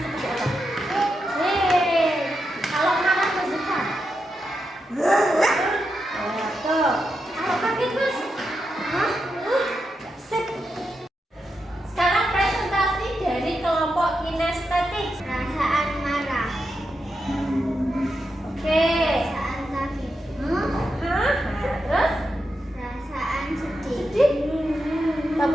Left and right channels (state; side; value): normal; both; correlation 0.86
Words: apa? Kalau marah bersuka. Tuh. Kalau kaget Mas? Sip. Sekarang presentasi dari kelompok kinestetik. Perasaan marah. Oke. Perasaan kaget. Terus? Perasaan sedih.